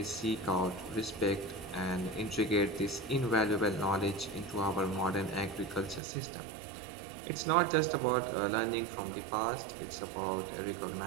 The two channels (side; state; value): left; drops out; at 6.0 s